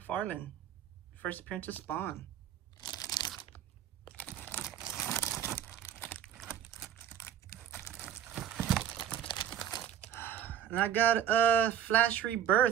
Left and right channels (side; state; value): left; quieter; 9.8 dB